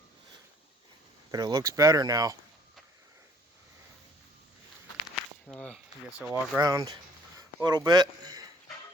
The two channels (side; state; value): both; normal; correlation 0.59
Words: but it looks better now. I guess I'll walk around a little bit.